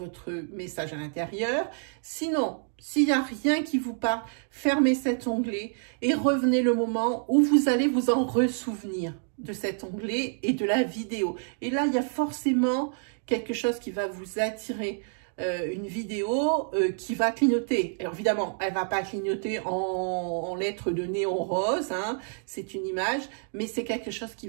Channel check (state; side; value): silent; left; 56 dB below the other